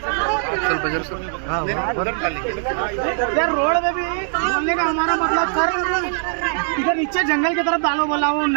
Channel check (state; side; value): silent; left; digital silence